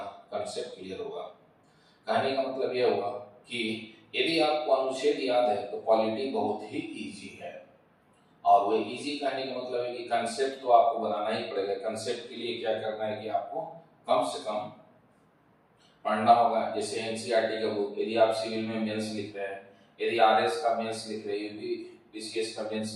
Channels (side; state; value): both; identical; correlation 1.00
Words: कंसेप्ट क्लियर होगा। कहने का मतलब यह हुआ कि यदि आपको अनुच्छेद याद है तो पॉलिटी बहुत ही इजी है। और वो इजी कहने का मतलब है कि कंसेप्ट तो आपको बनाना ही पड़ेगा। कंसेप्ट के लिए क्या करना है कि आपको कम से कम पढ़ना होगा। जैसे एनसीईआरटी का बुक, यदि आप सिविल में मेंस लिख रहे हैं, यदि आरएस का मेंस लिख रहे हैं, यूपी पीसीएस का